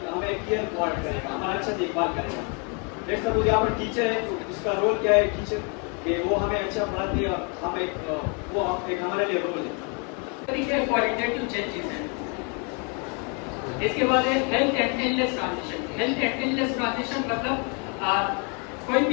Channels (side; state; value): right; quieter; 35.7 dB